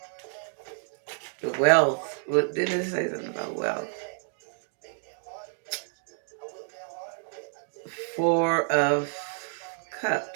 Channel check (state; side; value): silent; left; 58 dB below the other